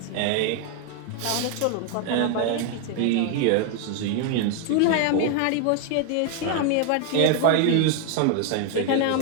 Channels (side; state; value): both; different; correlation 0.01